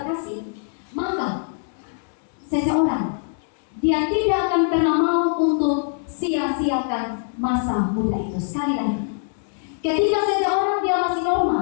maka seseorang dia tidak akan pernah mau untuk sia-siakan masa muda itu. Sekali lagi, ketika seseorang dia masih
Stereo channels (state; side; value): silent; right; digital silence